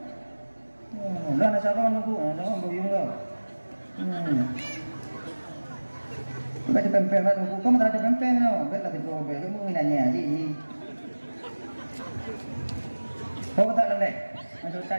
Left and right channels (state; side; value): inverted; both; correlation -1.00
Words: Dah nak saron tunggu, jangan boyong kau. Baca pempeng lah tunggu. Kamu tak ada pempeng tau. Baiklah tipu obel. Kamu nanya ji. Kau tak lelek. Masuk